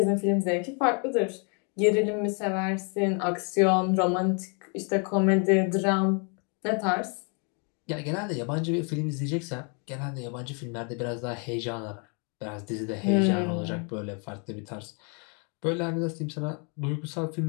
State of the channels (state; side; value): quieter; right; 37.5 dB